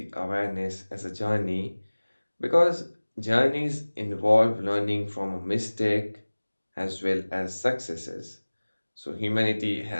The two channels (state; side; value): inverted; both; correlation -1.00